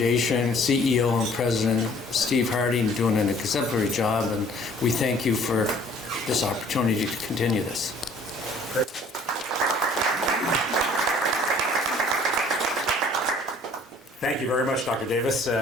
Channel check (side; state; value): both; normal; correlation 0.55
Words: CEO and President, Steve Harding, doing an exemplary job, and we thank you for this opportunity to continue this. Great. Thank you very much, Dr. Davis.